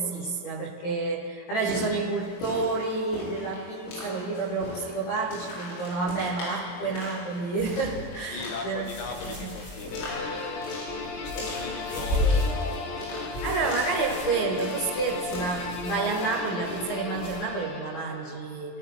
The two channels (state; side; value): late; right; 22 ms